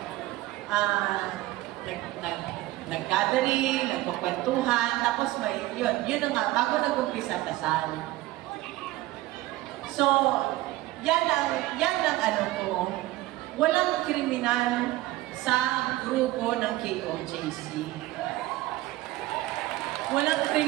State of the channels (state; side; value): quieter; left; 17.5 dB